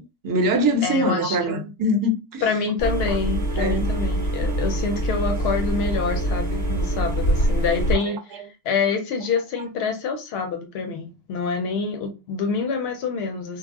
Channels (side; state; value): right; late; 2.9 ms